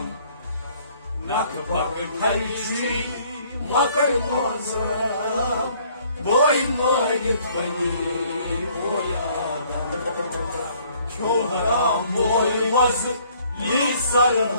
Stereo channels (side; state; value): both; inverted; correlation -0.60